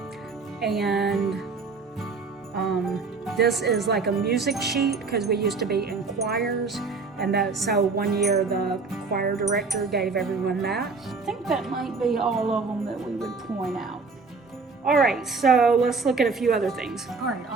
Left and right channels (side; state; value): left; quieter; 4.4 dB